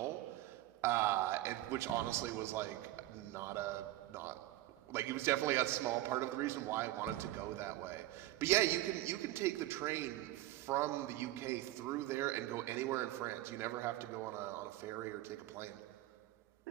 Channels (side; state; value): left; quieter; 16.1 dB